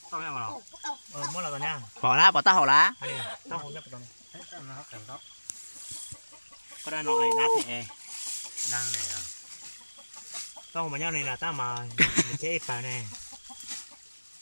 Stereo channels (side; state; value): both; inverted; correlation -1.00